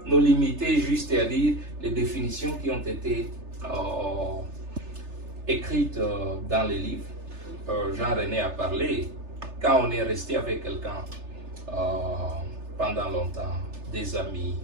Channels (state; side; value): late; left; 3.3 ms